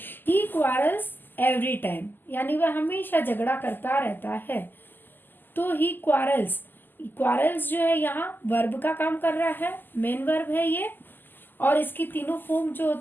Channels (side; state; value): right; late; 0.091 ms